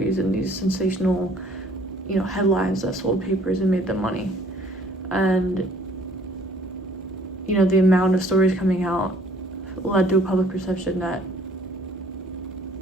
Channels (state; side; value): normal; both; correlation 0.57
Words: and these sensational, headlines that sold papers and made them money. And the amount of stories coming out led to a public perception that